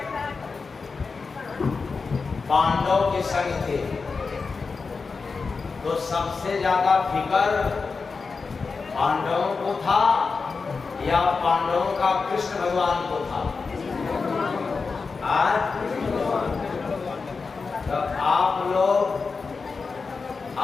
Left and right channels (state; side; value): quieter; right; 4.6 dB